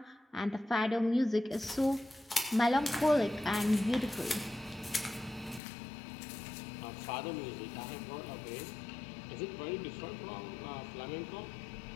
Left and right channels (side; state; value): right; drops out; at 5.6 s